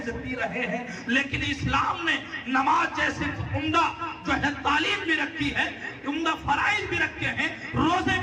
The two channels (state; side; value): identical; both; correlation 1.00